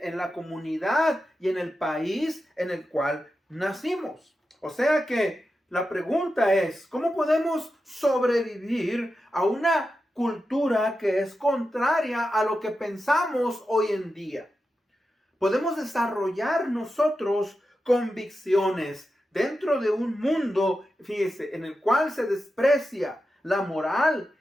la comunidad y en el país en el cual nacimos. O sea que la pregunta es, ¿cómo podemos sobrevivir a una cultura que es contraria a lo que pensamos hoy en día? Podemos desarrollar nosotros convicciones dentro de un mundo, fíjese, en el cual se desprecia la moral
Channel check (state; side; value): normal; both; correlation 0.90